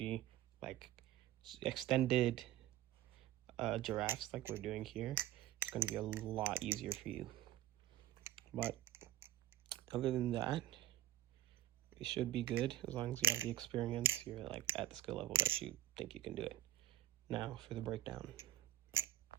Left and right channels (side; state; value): left; quieter; 12.9 dB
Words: like extended giraffes like we're doing here, it's going to be a lot easier for you. But other than that, it should be good as long as you have the experience. You're like at the skill level that you think you can do it. Now for the breakdown.